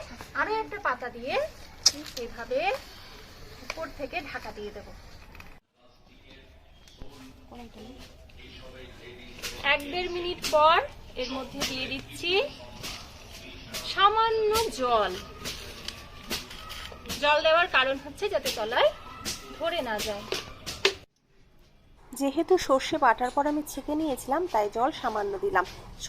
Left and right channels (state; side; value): identical; both; correlation 1.00